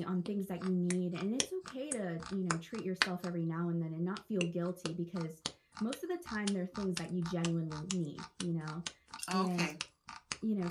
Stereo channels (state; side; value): identical; both; correlation 1.00